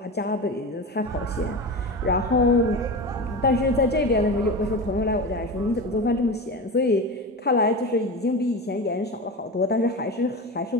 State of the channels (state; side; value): normal; both; correlation 0.26